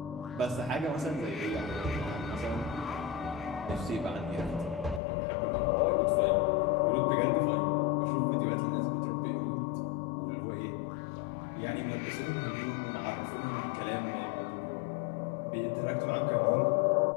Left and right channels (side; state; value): right; drops out; at 5.0 s